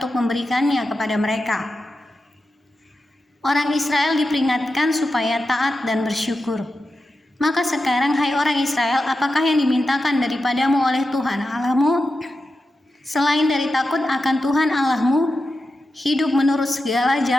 memberikannya kepada mereka. Orang Israel diperingatkan supaya taat dan bersyukur. Maka sekarang, hai orang Israel, apakah yang dimintakan daripadamu oleh Tuhan Allahmu? Selain dari takut akan Tuhan Allahmu, hidup menurut segala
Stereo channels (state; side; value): normal; both; correlation 0.90